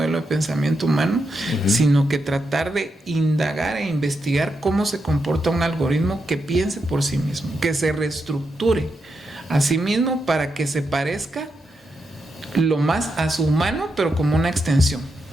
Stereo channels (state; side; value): normal; both; correlation 0.84